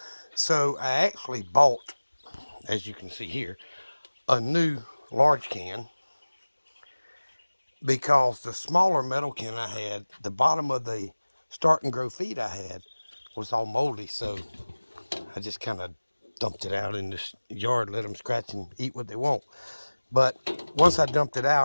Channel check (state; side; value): inverted; both; correlation -1.00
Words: So I actually bought, as you can see here, a new large can because the smaller metal can I had, the bottom of the start and grow feed I had was all moldy, so I just kind of dumped it out in this yard, let them scratch and eat what they want. But once I dumped it